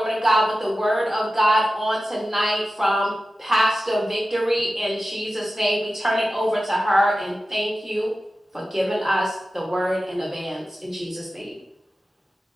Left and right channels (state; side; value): normal; both; correlation 0.94